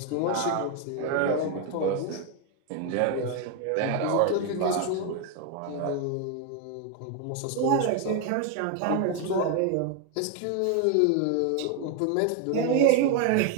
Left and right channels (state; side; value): different; both; correlation 0.01